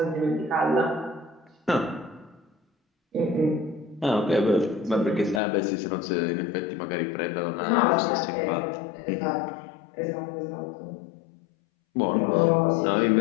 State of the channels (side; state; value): right; drops out; at 5.4 s